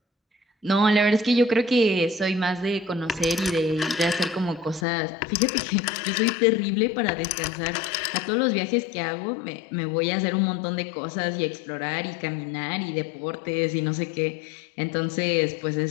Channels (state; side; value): drops out; right; at 4.9 s